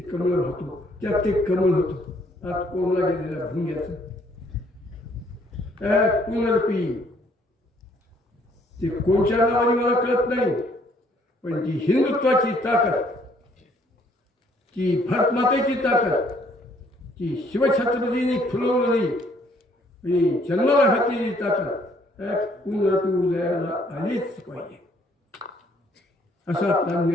होतो. त्यात ते कमळ होतो आत कोंबला गेलेला भुंग्याचं पुनर्पी. ते कोणत्या नावाने मला कळत नाही पण ती हिंदुत्वाची ताकद, ती भारतमातेची ताकद, ती शिवछत्रपतींनी फुलवलेली आणि जन्माला घातलेली ताकद पुनर्पी उदयाला आलीच पाहिजे असा आपला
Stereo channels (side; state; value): both; normal; correlation 0.64